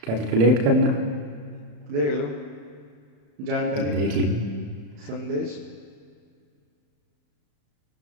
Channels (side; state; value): left; late; 35 ms